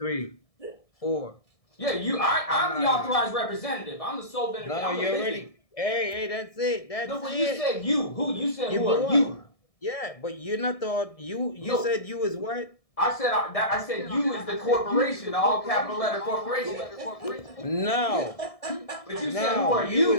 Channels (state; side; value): late; right; 1.6 ms